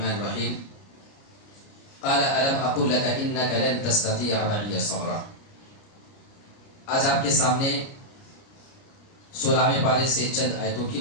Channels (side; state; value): right; late; 29 ms